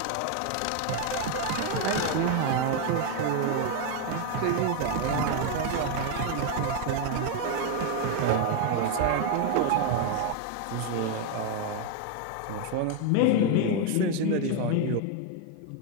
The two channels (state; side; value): different; both; correlation 0.01